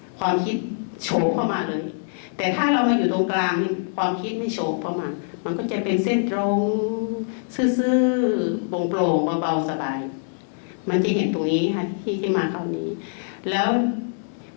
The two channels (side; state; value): right; silent; digital silence